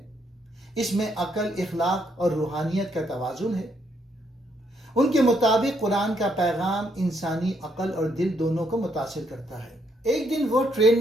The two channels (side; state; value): both; normal; correlation 0.73